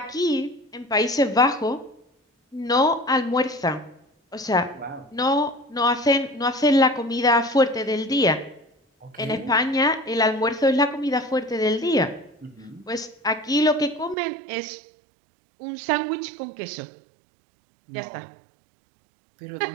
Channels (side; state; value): left; drops out; at 14.2 s